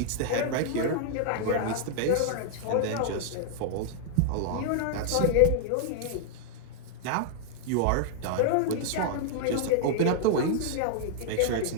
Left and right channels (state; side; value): different; both; correlation -0.01